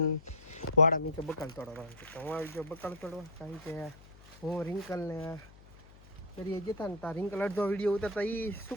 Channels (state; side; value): noise; left; hum, 22 dB below the sound